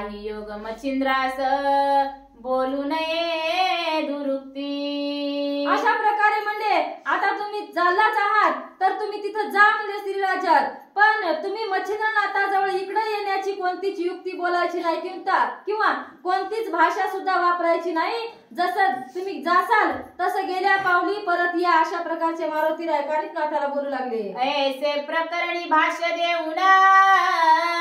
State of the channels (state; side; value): identical; both; correlation 1.00